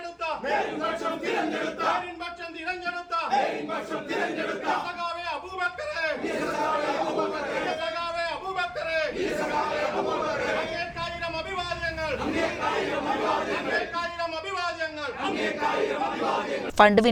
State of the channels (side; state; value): both; identical; correlation 1.00